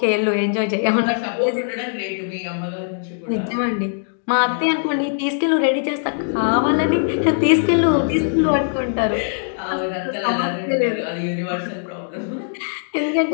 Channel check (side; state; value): right; silent; digital silence